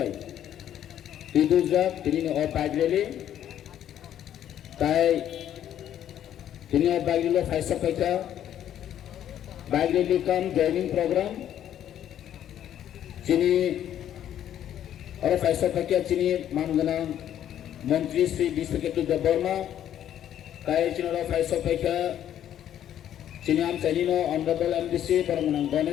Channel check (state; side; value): quieter; right; 10.7 dB